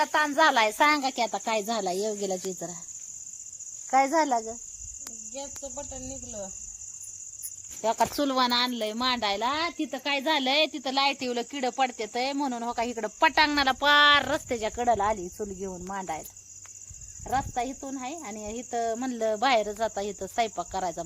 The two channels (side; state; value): both; identical; correlation 1.00